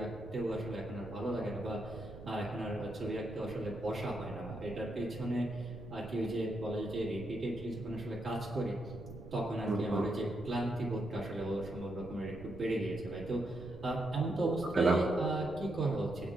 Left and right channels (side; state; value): right; noise; rumble, 13 dB below the sound